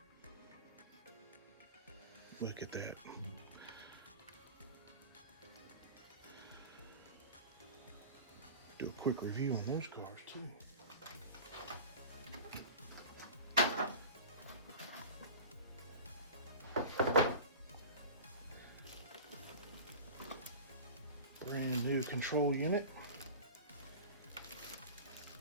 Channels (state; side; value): inverted; both; correlation -0.35